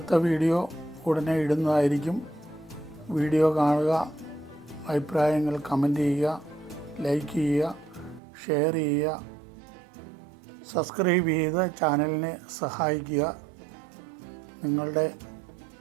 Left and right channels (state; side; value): drops out; left; at 8.2 s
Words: വീഡിയോ ഉടനെ ഇടുന്നതായിരിക്കും. വീഡിയോ കാണുക, അഭിപ്രായങ്ങൾ കമൻറ്റ് ചെയ്യുക, ലൈക്ക് ചെയ്യുക, ഷെയർ ചെയ്യുക, സബ്സ്ക്രൈബ് ചെയ്ത് ചാനലിനെ സഹായിക്കുക. നിങ്ങളുടെ